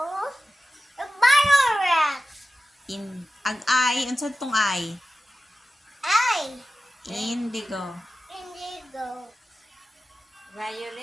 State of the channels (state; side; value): normal; both; correlation 0.94